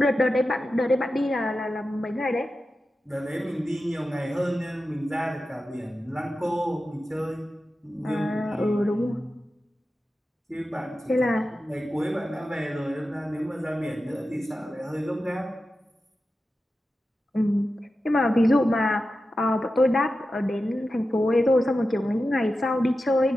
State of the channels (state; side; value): normal; both; correlation 0.92